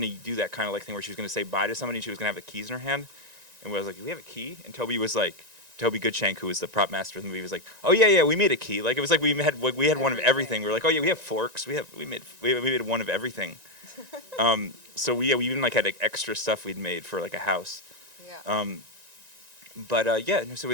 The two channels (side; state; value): left; late; 1.9 ms